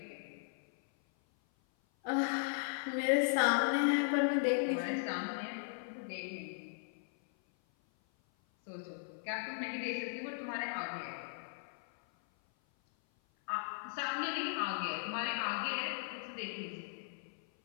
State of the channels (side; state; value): right; silent; 53 dB below the other